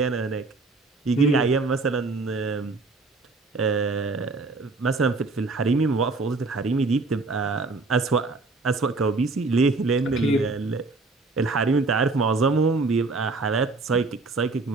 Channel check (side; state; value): left; quieter; 3.7 dB